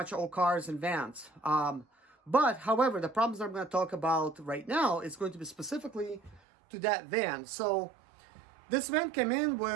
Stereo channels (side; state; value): left; drops out; at 6.4 s